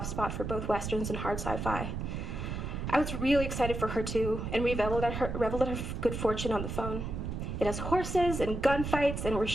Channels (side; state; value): right; noise; rumble, 4 dB below the sound